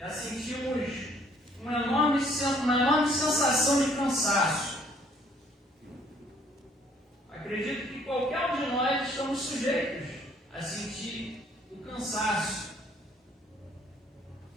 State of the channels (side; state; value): both; normal; correlation 0.61